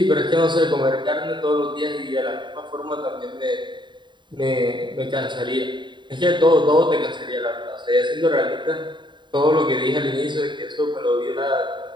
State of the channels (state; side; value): late; left; 0.23 ms